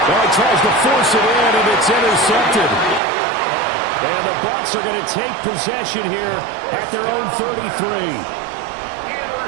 Well, he tries to force it in, and it's intercepted. And the Bucs are going to take possession here at their own 33.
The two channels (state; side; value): drops out; left; at 3.0 s